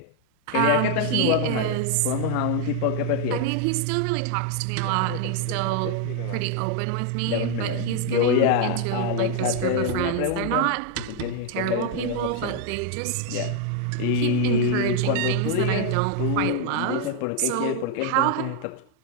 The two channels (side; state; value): both; different; correlation 0.00